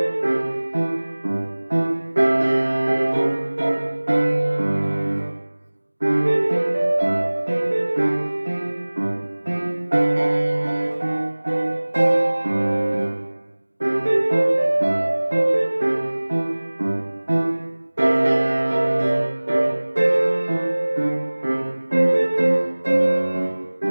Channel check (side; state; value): both; inverted; correlation -1.00